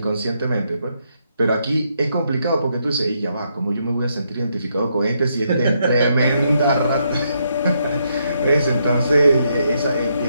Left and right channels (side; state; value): both; inverted; correlation -0.77